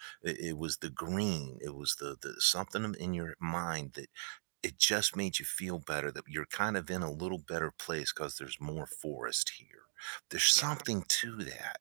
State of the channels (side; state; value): left; silent; digital silence